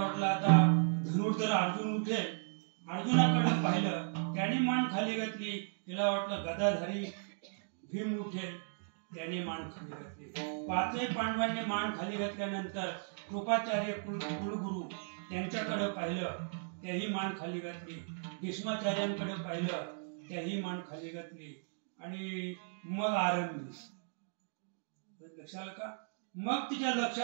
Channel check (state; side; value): silent; left; digital silence